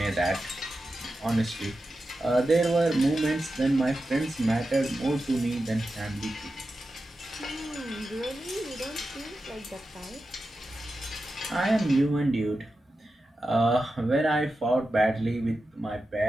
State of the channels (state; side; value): normal; both; correlation 0.91